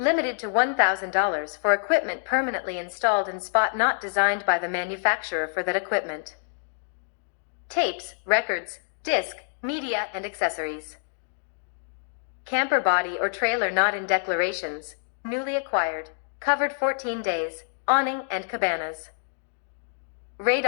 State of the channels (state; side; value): silent; right; digital silence